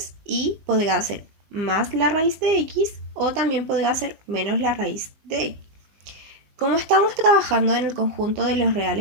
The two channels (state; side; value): late; left; 19 ms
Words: y podrá ser más la raíz de x o también podrá ser menos la raíz de x. Como estamos trabajando en el conjunto de los